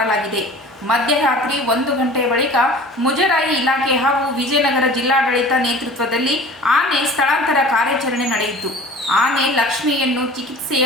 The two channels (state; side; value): normal; both; correlation 0.43